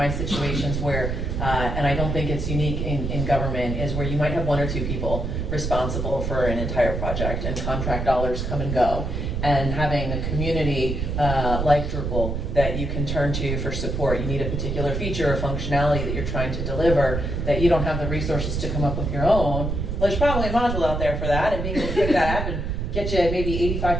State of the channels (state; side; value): noise; right; rumble, 2 dB below the sound